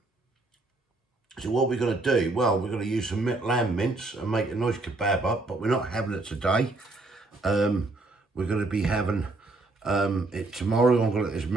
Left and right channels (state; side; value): quieter; left; 3.1 dB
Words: So what we're going to do, well, we're going to use some lamb mince and make a nice kebab up, but we're not having it today. We're going to be having it tomorrow. I'm going to let this